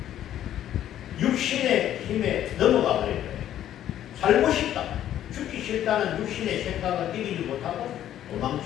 육신의 힘에 넘어가 버린 거예요. 살고 싶다. 죽기 싫다는 육신의 생각을 이기지 못하고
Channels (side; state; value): right; quieter; 11.5 dB